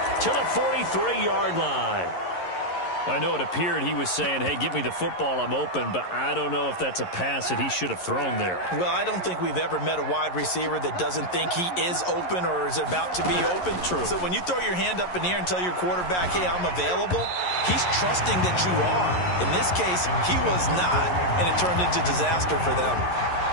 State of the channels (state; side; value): late; right; 11 ms